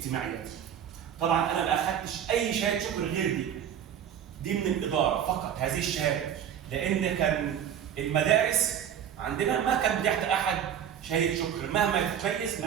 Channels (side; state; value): left; quieter; 9.2 dB